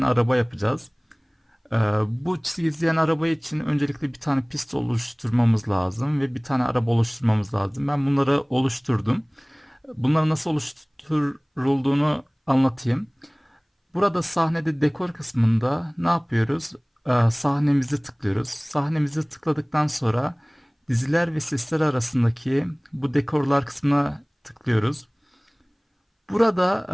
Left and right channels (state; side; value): identical; both; correlation 1.00